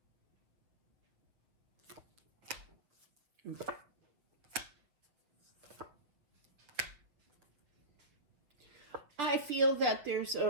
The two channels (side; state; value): left; late; 7.1 ms